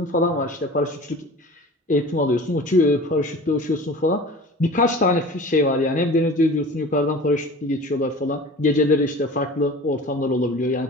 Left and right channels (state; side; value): normal; both; correlation 0.39